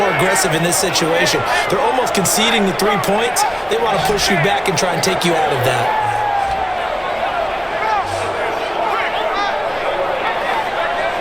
aggressive in this situation. They're almost conceding the 3 points. They want to push you back and try and take you out of that.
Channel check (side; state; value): both; identical; correlation 1.00